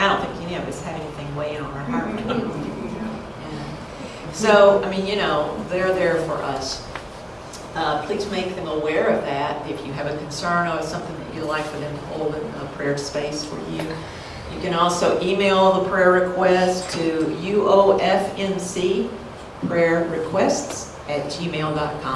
don't think any of us have anything weighing on our heart. So, I mean, you know, they're there for us. Please make them aware of that. If you have a concern or something that you'd like for them to hold in a prayer space for you. You can also email the prayer request to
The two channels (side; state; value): both; identical; correlation 1.00